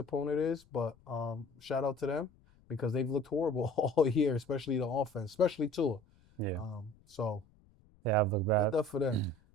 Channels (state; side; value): noise; left; rumble, 29 dB below the sound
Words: is, but shout out to them because they've looked horrible all year, especially the offense, especially Tua. Yeah. So Yeah, I've looked good bad. stuff for them.